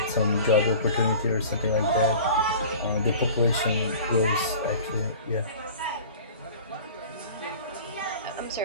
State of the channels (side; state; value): both; inverted; correlation -0.40